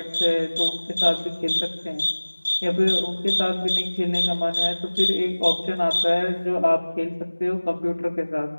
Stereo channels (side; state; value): both; inverted; correlation -1.00